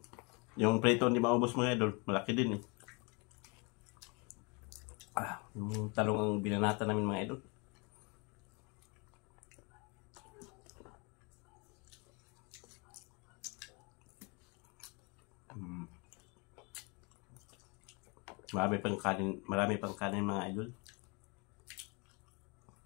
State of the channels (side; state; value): right; quieter; 30.6 dB